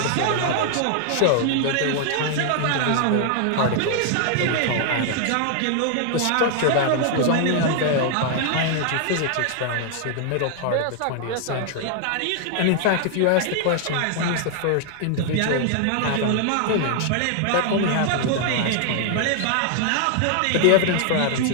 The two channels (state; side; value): different; both; correlation 0.00